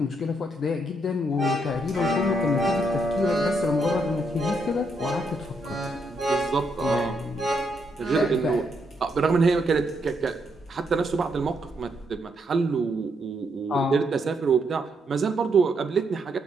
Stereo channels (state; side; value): normal; both; correlation 0.77